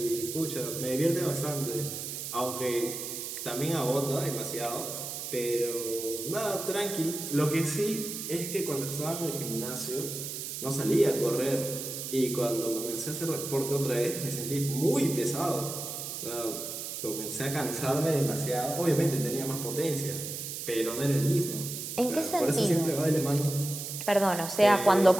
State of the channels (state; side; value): noise; right; hiss, 6 dB below the sound